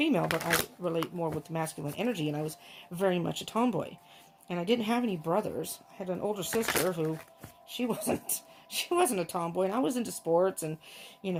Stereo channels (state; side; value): identical; both; correlation 1.00